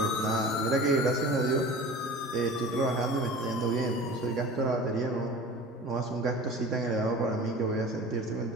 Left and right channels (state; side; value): normal; both; correlation 0.38